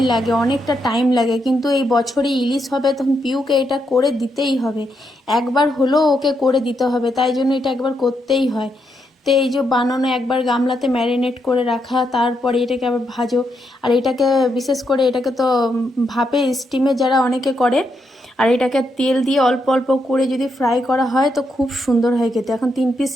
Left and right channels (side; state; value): both; normal; correlation 0.80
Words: লাগে, অনেকটা টাইম লাগে, কিন্তু এই বছরে ইলিশ হবে তখন পিউকে এটা করে দিতেই হবে, একবার হলেও ওকে করে দিতে হবে, তাই জন্য এটা একবার করতেই হয়। তো এই যে বানানো, একবার গামলাতে ম্যারিনেট করে রাখা, তারপরে এটাকে আবার ভাজো। আর এটাকে বিশেষ করে এটাকে তো ভাপে স্টিমে যারা অনেকে করে, আর এটাকে তেল দিয়ে অল্প অল্প করে যদি ফ্রাই করা হয় তো খুব সুন্দর হয় খেতে। এখন 3 পিস